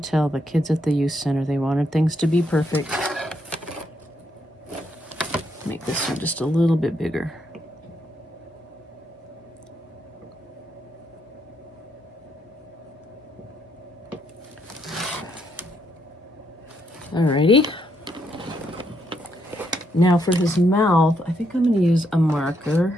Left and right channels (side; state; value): both; normal; correlation 0.76